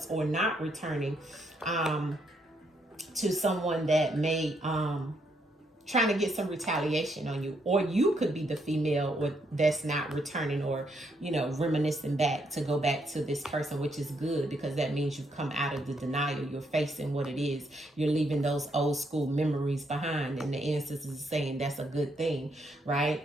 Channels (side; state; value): both; normal; correlation 0.75